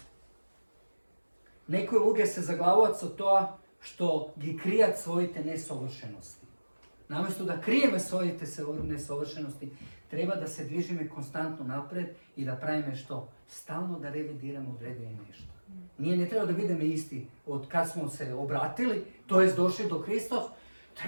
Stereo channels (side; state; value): both; inverted; correlation -1.00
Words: Nekoj luge se zaglavovac od toga što gi krijat svojite nesovršenosti. Namjesto da krijeme svojite nesovršenosti, treba da se dvižime konstantno napred i da pravime što? Stalno da revidiramo odredimo nešto. Ne treba da vidimo isti od kad smo se obratili, to jest došli do Hristos,